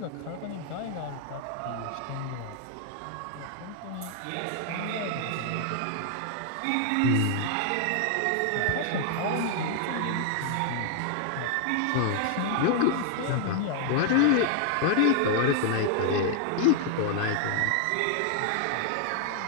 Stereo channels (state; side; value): different; both; correlation 0.00